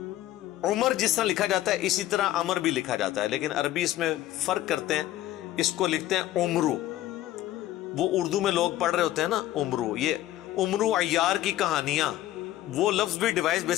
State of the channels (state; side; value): quieter; right; 14.3 dB